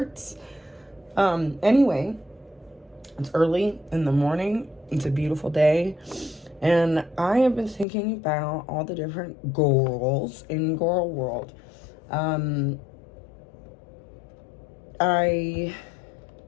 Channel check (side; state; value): right; drops out; at 7.9 s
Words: Anyway, it's early in the morning. It's a beautiful day. And I have been thinking about all the different girls in girl world. Anna